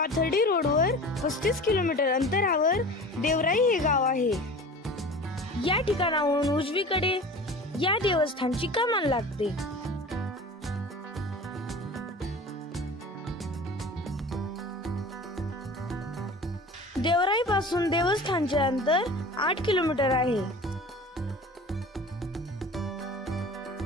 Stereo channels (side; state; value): both; normal; correlation 0.38